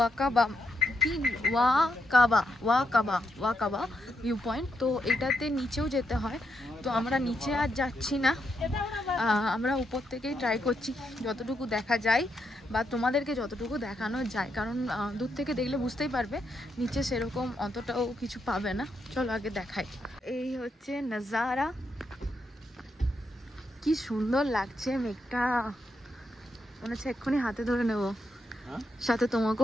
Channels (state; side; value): normal; both; correlation 0.81